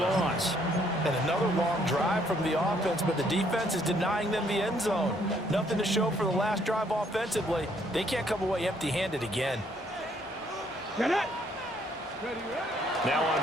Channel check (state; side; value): normal; both; correlation 0.67